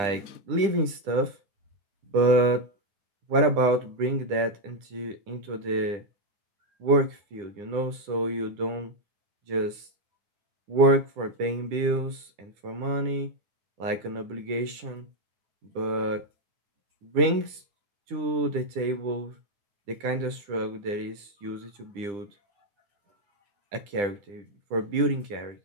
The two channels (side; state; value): left; late; 9.9 ms